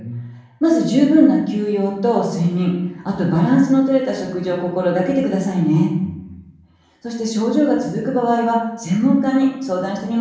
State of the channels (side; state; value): both; identical; correlation 1.00